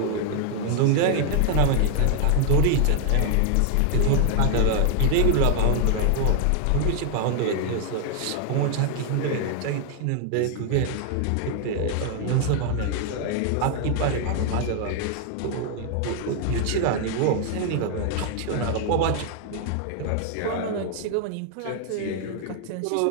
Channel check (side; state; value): both; different; correlation 0.00